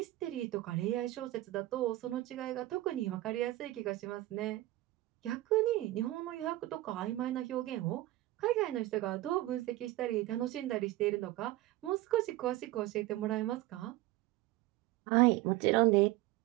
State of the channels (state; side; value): quieter; left; 17.0 dB